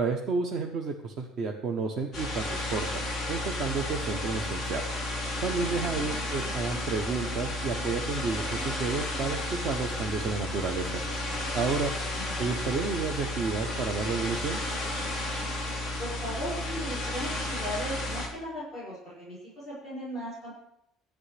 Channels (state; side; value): normal; both; correlation 0.54